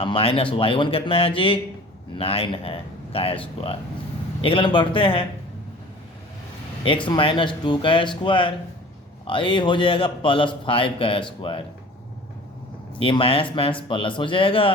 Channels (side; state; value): both; normal; correlation 0.44